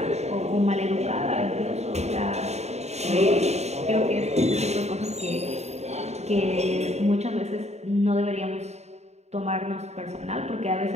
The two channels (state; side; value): late; left; 0.32 ms